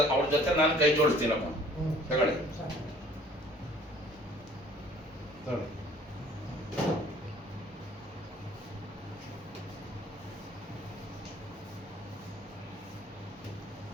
ಅವ್ರ ಜೊತೆ ನಾನು ಕೈ ಜೋಡಿಸ್ತೀನಪ್ಪ. ತಗೊಳ್ಳಿ.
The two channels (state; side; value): normal; both; correlation 0.54